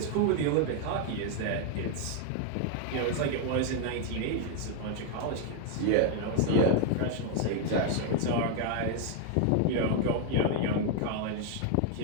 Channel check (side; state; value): both; different; correlation 0.00